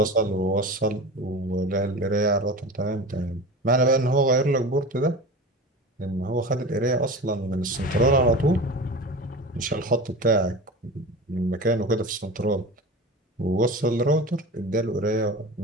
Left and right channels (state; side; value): normal; both; correlation 0.31